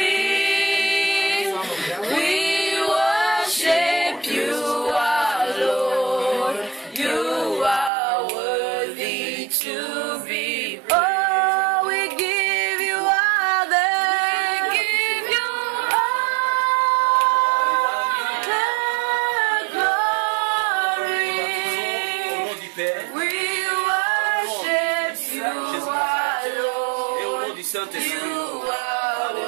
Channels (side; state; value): left; drops out; at 7.9 s